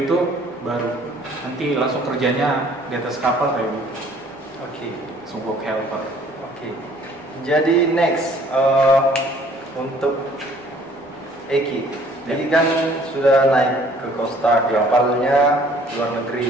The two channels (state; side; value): normal; both; correlation 0.56